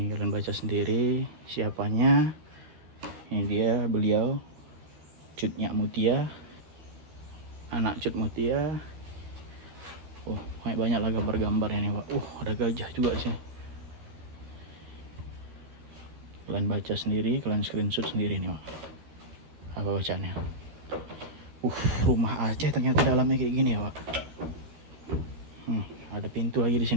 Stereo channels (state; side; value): late; left; 13 ms